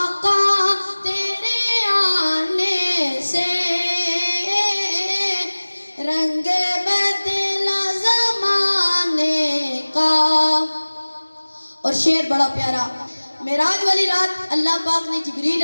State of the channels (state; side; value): inverted; both; correlation -1.00